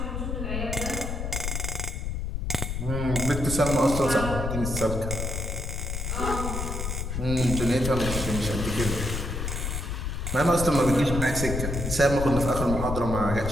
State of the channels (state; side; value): noise; left; rumble, 3 dB below the sound